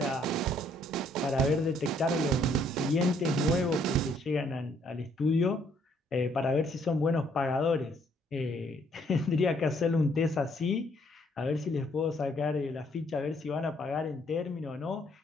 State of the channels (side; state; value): both; normal; correlation 0.66